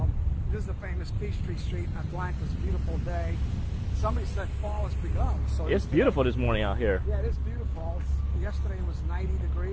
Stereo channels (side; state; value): both; identical; correlation 1.00